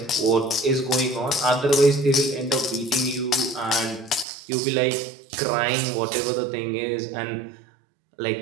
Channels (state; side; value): drops out; left; at 4.2 s